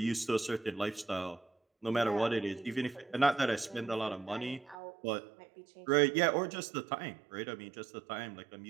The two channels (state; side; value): drops out; left; at 4.8 s